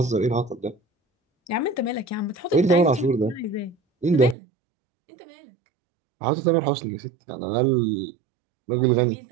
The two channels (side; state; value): left; drops out; at 4.4 s